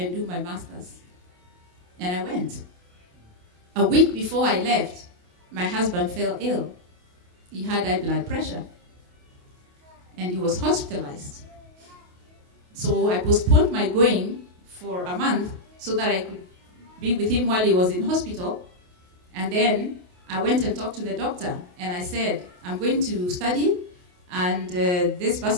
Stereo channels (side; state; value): left; late; 28 ms